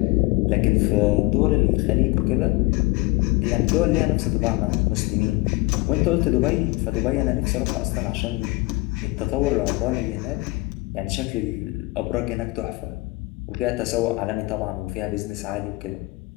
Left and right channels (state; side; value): quieter; right; 22.7 dB